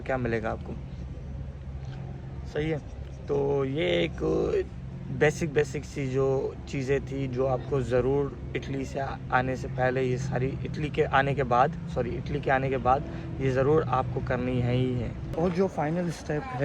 क्या मिलेगा आपको। सही है। तो ये एक बेसिक सी जो चीज़ें थी जो आपको ज़रूर इटली से आने से पहले, ये सारी इटली के आने के बाद ये ज़रूर आपको करनी है ही है। और जो फाइनल स्टेप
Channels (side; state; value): both; identical; correlation 1.00